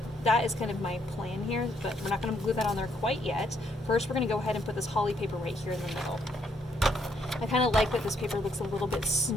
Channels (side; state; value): both; normal; correlation 0.71